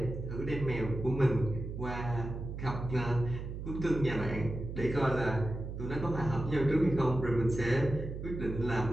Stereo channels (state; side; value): noise; right; hum, 7 dB below the sound